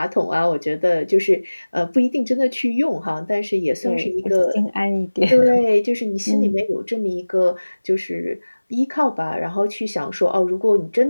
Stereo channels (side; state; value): both; inverted; correlation -1.00